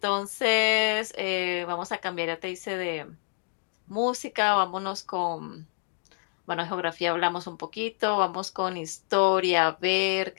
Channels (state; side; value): silent; right; 58 dB below the other